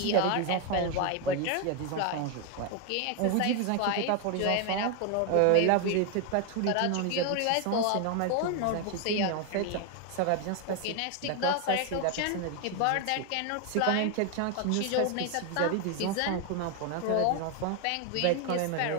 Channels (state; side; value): different; both; correlation 0.01